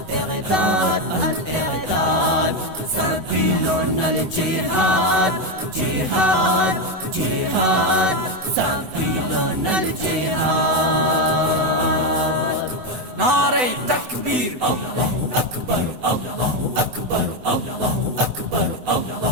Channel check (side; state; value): left; late; 8.0 ms